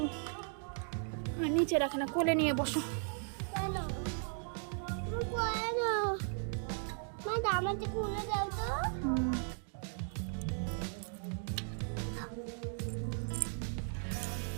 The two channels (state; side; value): silent; left; 53 dB below the other